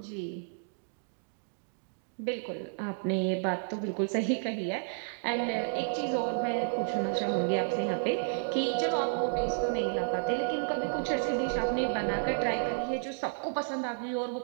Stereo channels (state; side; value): silent; left; digital silence